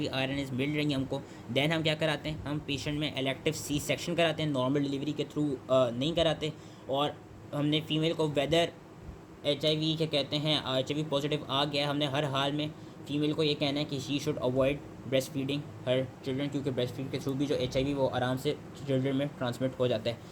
RNAs मिल रही हैं हमको, देन हम क्या कराते हैं हम पेशेंट में इलेक्टिव C सेक्शन कराते हैं, नॉर्मल डिलीवरी के थ्रू नहीं कराते। और हमने फीमेल को वेदर HIV क्या कहते हैं HIV पॉजिटिव आ गया, हमने हर हाल में फीमेल को ये कहना है कि she should avoid breast feeding her children, क्योंकि ब्रेस्ट फीड के थ्रू भी जो HIV वो आराम से चिल्ड्रन में ट्रांसमिट हो जाता है।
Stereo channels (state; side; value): identical; both; correlation 1.00